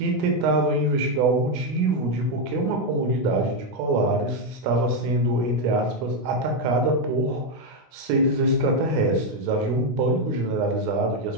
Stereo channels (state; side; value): late; left; 16 ms